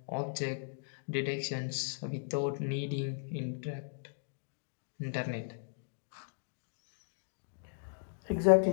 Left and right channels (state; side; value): silent; right; digital silence